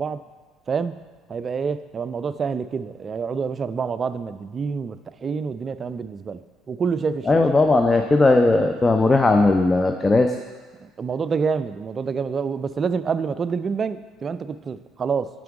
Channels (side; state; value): both; normal; correlation 0.85